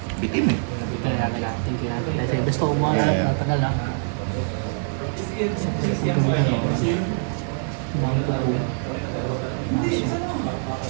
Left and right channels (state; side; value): silent; left; digital silence